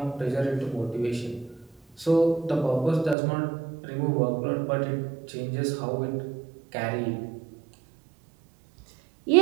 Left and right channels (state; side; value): drops out; left; at 3.2 s